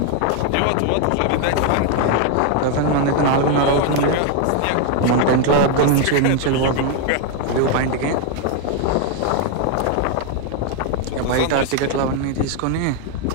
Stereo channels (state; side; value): different; both; correlation 0.00